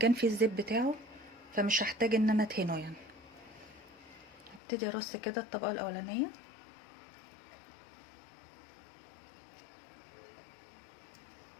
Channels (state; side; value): drops out; right; at 4.6 s